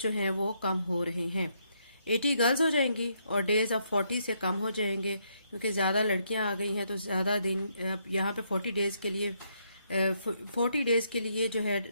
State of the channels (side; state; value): both; inverted; correlation -0.75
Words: हैं वो कम हो रहे हैं। 80 गर्ल्स हो जाएंगी और डेज अब 40 से कम हो जाएंगे, क्योंकि ज्यादा लड़कियां आ गई हैं तो ज्यादा दिन। यहाँ पे 40 डेज के लिए 40 डेज के लिए जो है